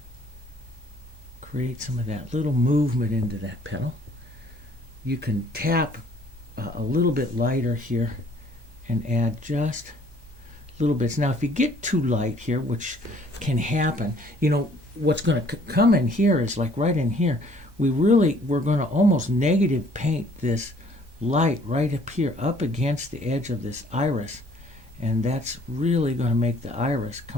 create some of that little movement into that petal. You can tap a little bit lighter here and add just little bits. Now, if you get too light here, which can happen, you know, what's going to come in here is like right in here. We're going to almost negative paint this light right up here, up against the edge of this iris. And that's really going to make the iris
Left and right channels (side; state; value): left; late; 1.2 ms